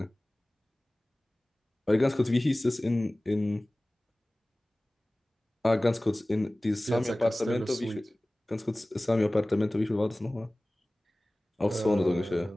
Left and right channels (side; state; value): both; normal; correlation 0.98